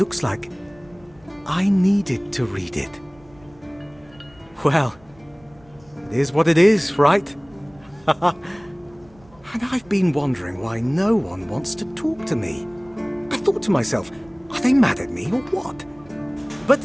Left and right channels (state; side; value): noise; right; rumble, 27 dB below the sound